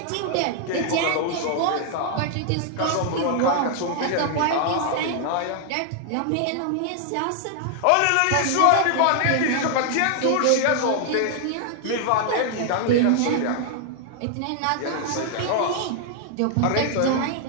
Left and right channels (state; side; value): different; both; correlation 0.00